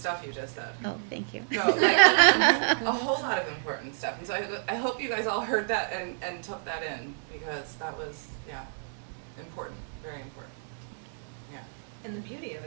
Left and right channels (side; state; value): left; silent; digital silence